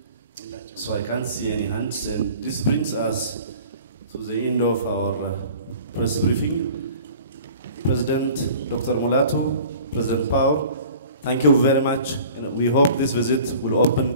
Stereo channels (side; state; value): both; inverted; correlation -0.46